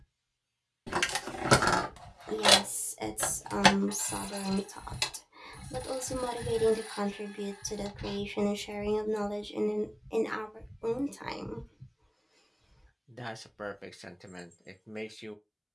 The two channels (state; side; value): identical; both; correlation 1.00